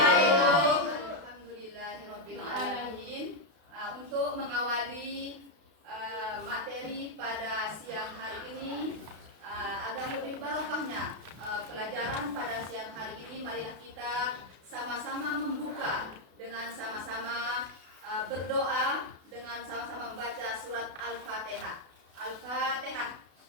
Alhamdulillahirabbil alamin. Untuk mengawali materi pada siang hari ini, agar lebih barokahnya pelajaran pada siang hari ini, marilah kita sama-sama membuka dengan sama-sama berdoa, dengan sama-sama membaca surat Al-Fatihah. Al-Fatihah.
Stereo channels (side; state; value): left; late; 32 ms